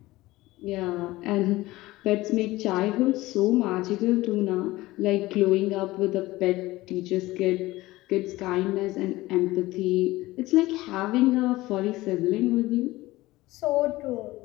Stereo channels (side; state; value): right; quieter; 18.6 dB